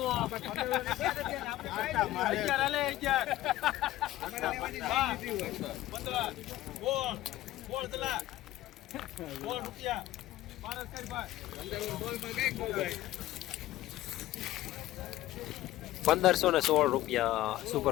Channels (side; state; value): right; quieter; 15.4 dB